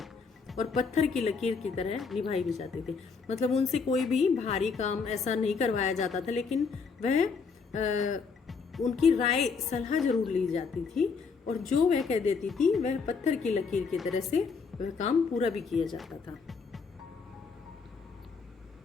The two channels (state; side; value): quieter; right; 5.2 dB